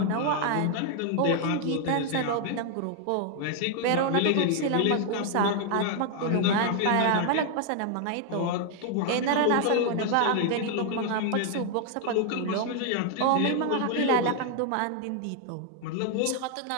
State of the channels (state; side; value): different; both; correlation 0.00